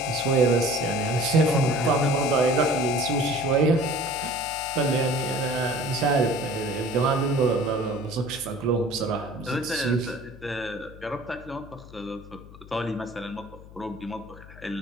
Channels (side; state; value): left; noise; hum, 18 dB below the sound